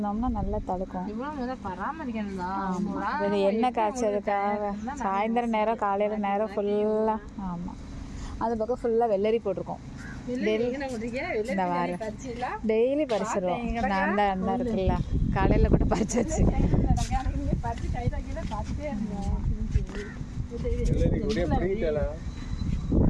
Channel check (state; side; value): identical; both; correlation 1.00